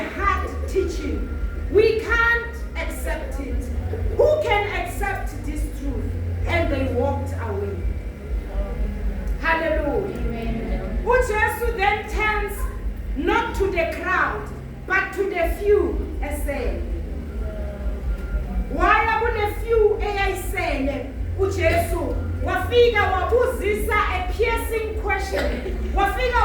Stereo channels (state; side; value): identical; both; correlation 1.00